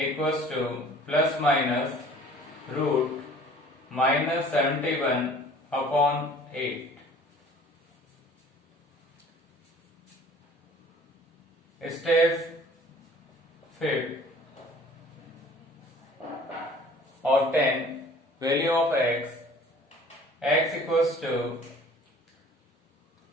to plus minus root minus 71 upon 8. Step 5. Obtain value of x. X equals to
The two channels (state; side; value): normal; both; correlation 0.50